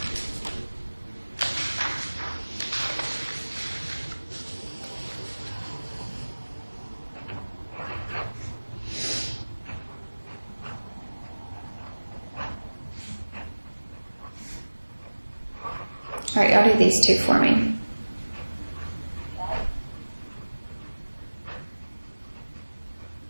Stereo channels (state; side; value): inverted; both; correlation -1.00